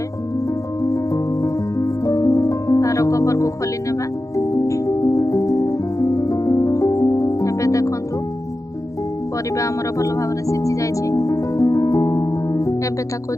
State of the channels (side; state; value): right; late; 0.16 ms